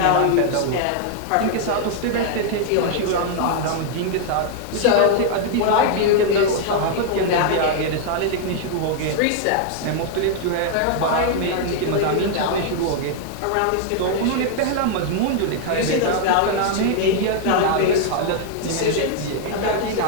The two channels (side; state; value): both; different; correlation 0.00